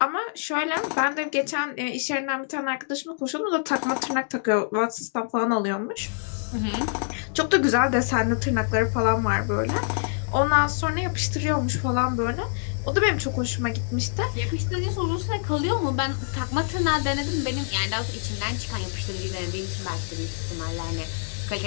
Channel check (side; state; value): right; silent; digital silence